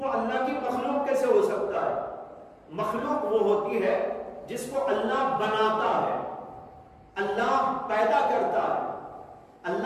اللہ کی مخلوق کیسے ہو سکتا ہے؟ مخلوق وہ ہوتی ہے جس کو اللہ بناتا ہے، اللہ پیدا کرتا ہے۔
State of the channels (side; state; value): both; identical; correlation 1.00